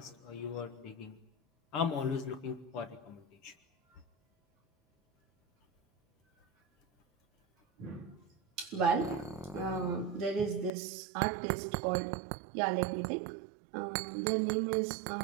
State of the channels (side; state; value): left; drops out; at 10.7 s